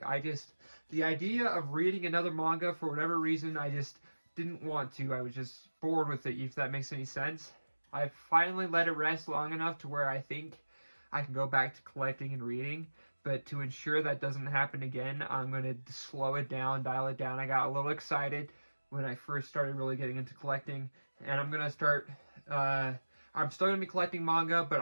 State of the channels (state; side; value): inverted; both; correlation -1.00